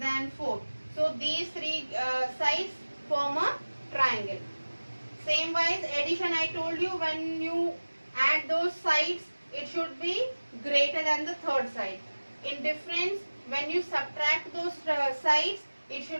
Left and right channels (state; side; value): inverted; both; correlation -1.00